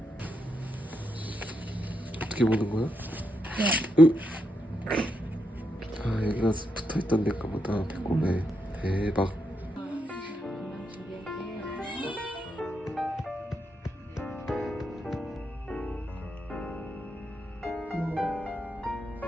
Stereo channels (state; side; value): normal; both; correlation 0.82